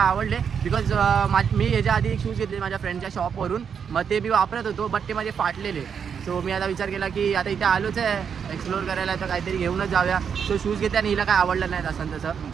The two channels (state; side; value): quieter; left; 7.1 dB